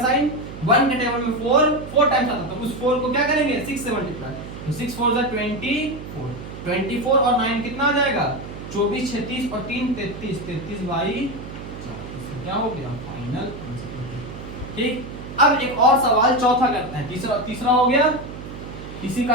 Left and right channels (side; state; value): right; noise; hum, 11 dB below the sound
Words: साइन, 1 के टेबल में 4 4 टाइम्स आता है, तो उस 4 को क्या करेंगे, 6 से मल्टीप्लाई, तो 6 4 जा 24, 24 और 9 कितना आ जाएगा, 24 36 और 3 33, 33/4, इसका क्या हो गया, फाइनल आंसर। ठीक, अब एक और सवाल चौथा करते हैं, तीसरा हो गया, इसी